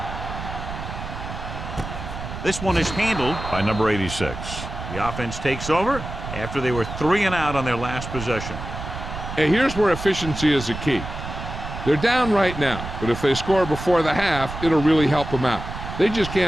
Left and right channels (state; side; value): noise; right; rumble, 8 dB below the sound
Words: This one is handled by number 86. The offense takes over after they were 3 and out on their last possession. And here's where efficiency is the key. They're down right now, but if they score before the half, it'll really help them out. They just